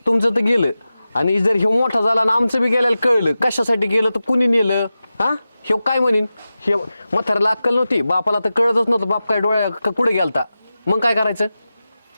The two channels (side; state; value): both; inverted; correlation -0.94